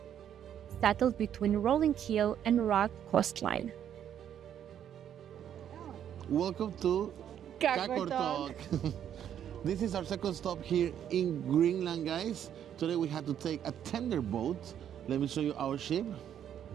settled between rolling hill and rugged coastline. Welcome to Qaqortoq. This is our second stop here in Greenland, guys. Today we had to take a tender boat. Let me show you our ship.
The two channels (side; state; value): left; quieter; 9.7 dB